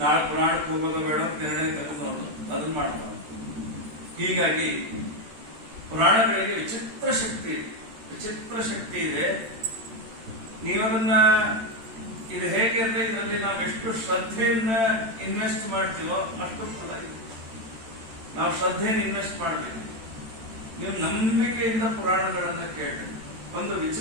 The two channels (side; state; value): left; late; 13 ms